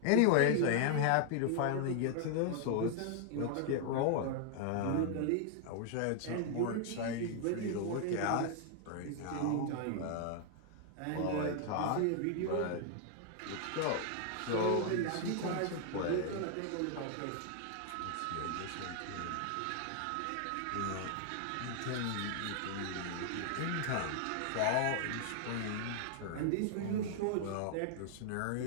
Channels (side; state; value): both; different; correlation 0.00